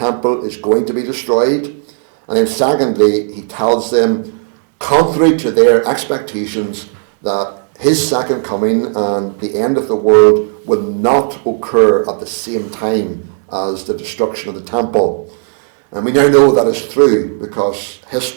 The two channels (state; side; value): silent; left; 59 dB below the other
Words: is going to be destroyed. And then secondly, he tells them, contrary to their expectations, that his second coming and the end of the world will not occur at the same time as the destruction of the temple. And we now know that is true, because